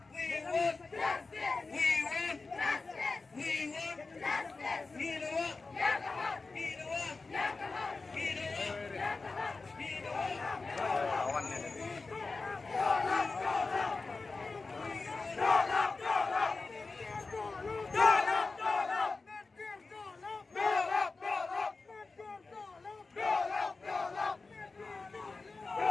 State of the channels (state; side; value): quieter; right; 3.9 dB